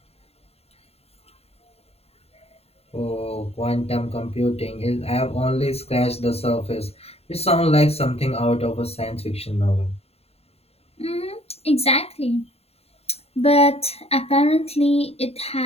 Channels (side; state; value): right; late; 0.29 ms